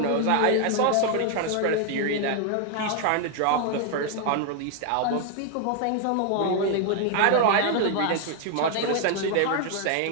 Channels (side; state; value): both; different; correlation 0.00